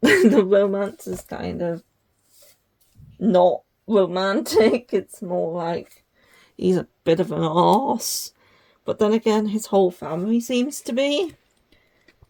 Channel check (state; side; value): identical; both; correlation 1.00